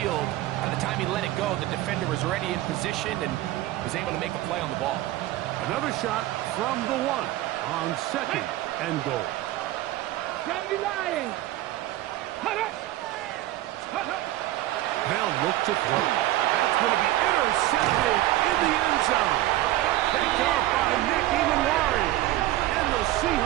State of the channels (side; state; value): left; quieter; 15.6 dB